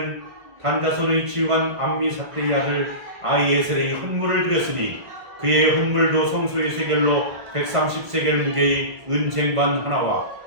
단 자손의 지휘관 암미사대의 아들 아히에셀의 헌물을 드렸으니 그의 헌물도 성소의 세겔로 130세겔 무게의 은쟁반 하나와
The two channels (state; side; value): late; left; 1.5 ms